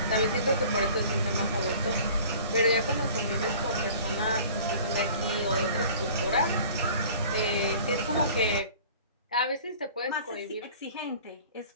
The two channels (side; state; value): both; inverted; correlation -0.46